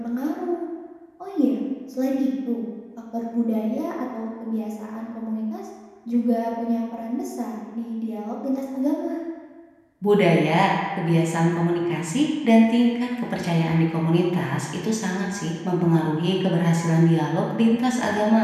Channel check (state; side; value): identical; both; correlation 1.00